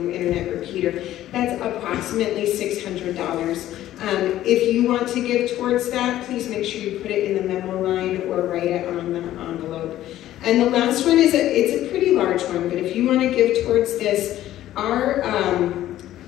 internet repeater. That's approximately $600. If you want to give towards that, please make sure you put it in the memo line or write it on the envelope. And the last one is it's a pretty large one, but if you want to give towards this, our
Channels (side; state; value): right; quieter; 13.5 dB